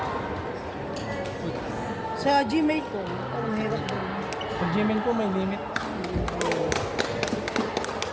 Sa Gmail ko. Parang hirap din. Pag Gmail ko may limit.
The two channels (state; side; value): identical; both; correlation 1.00